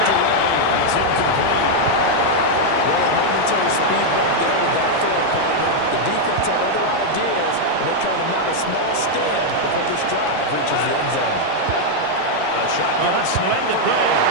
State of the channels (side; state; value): both; different; correlation -0.01